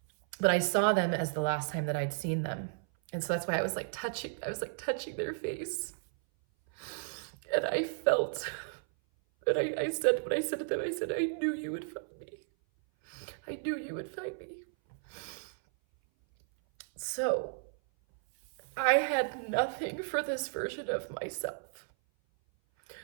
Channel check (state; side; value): silent; left; 55 dB below the other